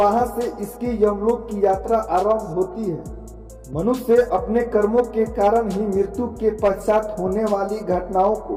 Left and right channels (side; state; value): both; identical; correlation 1.00